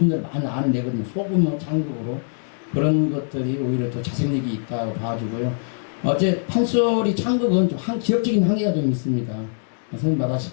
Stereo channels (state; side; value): silent; right; digital silence